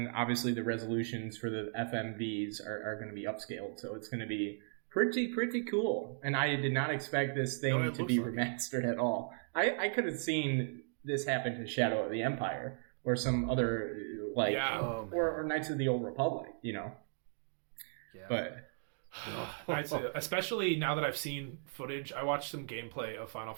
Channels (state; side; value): silent; left; digital silence